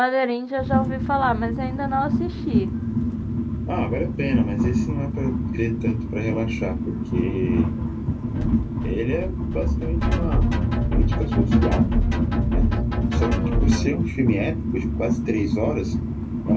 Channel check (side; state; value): both; identical; correlation 1.00